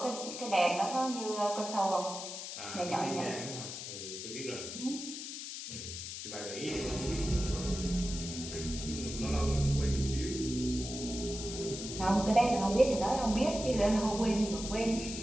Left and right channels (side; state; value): left; noise; hiss, 8 dB below the sound